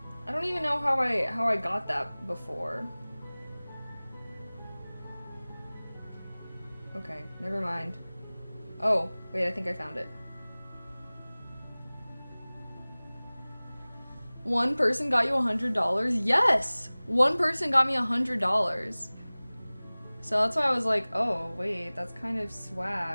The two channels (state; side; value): inverted; both; correlation -1.00